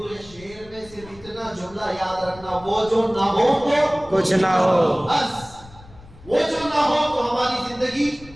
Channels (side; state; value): left; noise; rumble, 21 dB below the sound